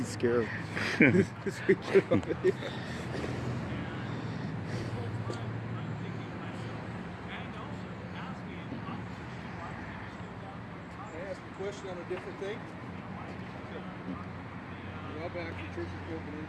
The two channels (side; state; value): both; identical; correlation 1.00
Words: scare him. Just to get him over here. Can I ask a question on a different thing? Well, back to church is broken